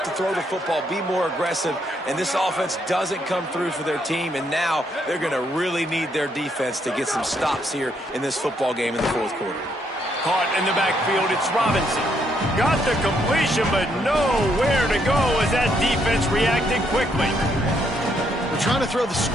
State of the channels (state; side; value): normal; both; correlation 0.74